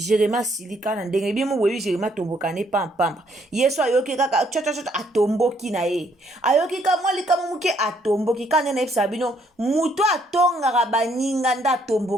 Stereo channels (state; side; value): normal; both; correlation 0.68